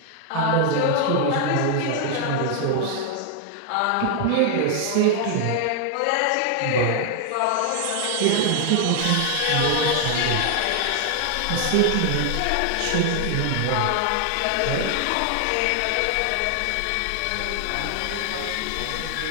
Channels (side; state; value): both; different; correlation 0.00